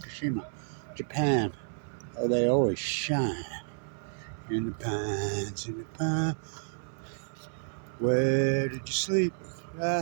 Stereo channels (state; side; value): silent; left; 57 dB below the other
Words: Japan. Oh, they always shine. In the pines, in the pines. Where did you sleep